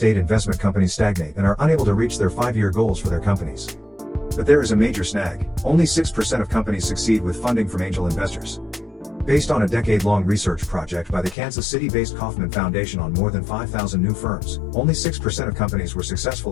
investment companies stagnate and are unable to reach their 5-year goals for their companies. But there is a major snag: only 6% of companies succeed with funding from angel investors. Based on a decade-long research project by the Kansas City-based Kauffman Foundation on more than 5,000 new firms, only 6% of companies were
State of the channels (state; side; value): drops out; right; at 11.4 s